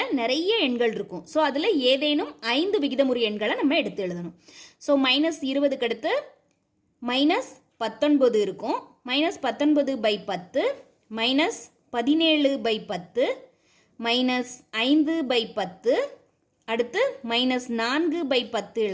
நிறைய எண்கள் இருக்கும். ஸோ அதில் ஏதேனும் 5 விகிதமுறு எண்களை நம்ம எடுத்து எழுதணும். ஸோ -20க்கு அடுத்து -19 இருக்கும். -19/10, -17/10, -5/10, அடுத்து -4/10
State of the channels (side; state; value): both; identical; correlation 1.00